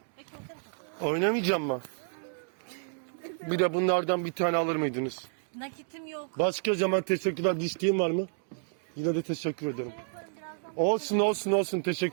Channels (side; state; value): left; silent; digital silence